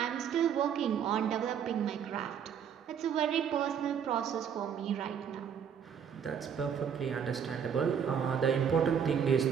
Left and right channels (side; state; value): left; quieter; 7.8 dB